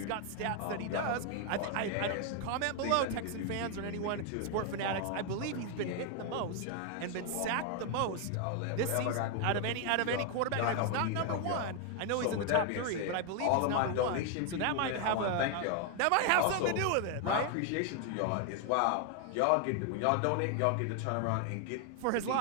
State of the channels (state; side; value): different; both; correlation 0.01